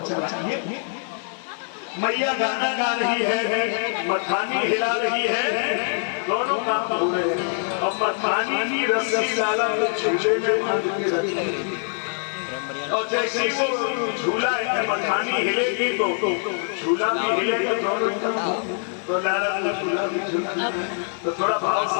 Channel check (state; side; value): silent; right; 62 dB below the other